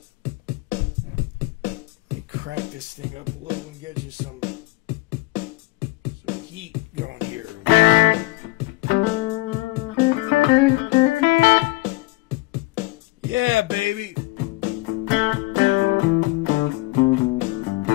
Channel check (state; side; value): quieter; right; 22.4 dB